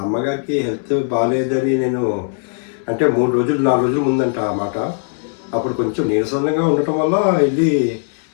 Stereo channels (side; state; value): right; silent; 63 dB below the other